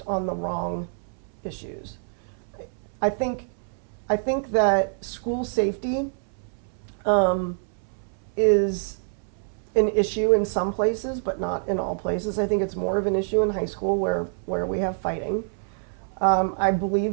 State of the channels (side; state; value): left; silent; 61 dB below the other